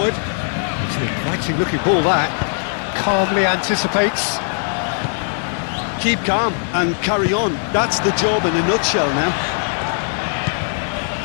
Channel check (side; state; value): right; silent; 66 dB below the other